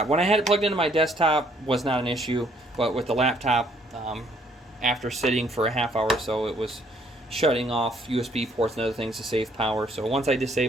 When I had it plugged into my desktop, was not an issue, but with the laptop, after sitting for a half hour or so, it was shutting off USB ports and other things to save power. So once I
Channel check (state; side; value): normal; both; correlation 0.65